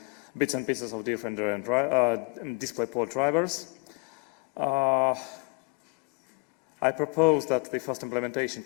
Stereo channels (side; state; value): right; quieter; 29.2 dB